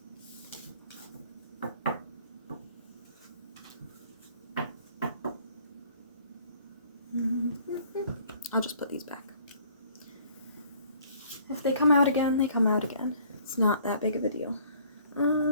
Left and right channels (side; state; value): both; inverted; correlation -0.57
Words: I'll just put these back. If they come out again, they come out again. It's not that big of a deal.